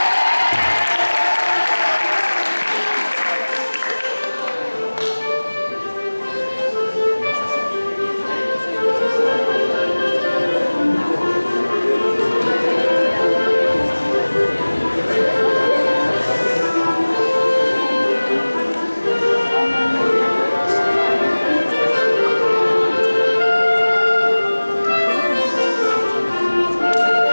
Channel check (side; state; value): both; inverted; correlation -1.00